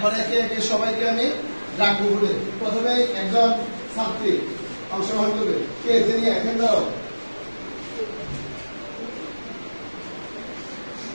একে একে সবাইকে আমি ডাকবো বলে প্রথমে একজন ছাত্রী অংশগ্রহণ করবে। কে তিনি এখন দাও।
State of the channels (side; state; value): both; inverted; correlation -1.00